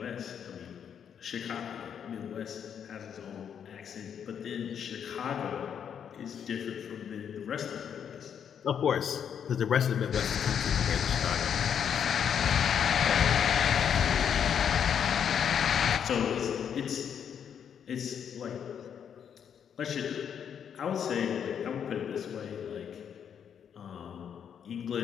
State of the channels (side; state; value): right; quieter; 8.1 dB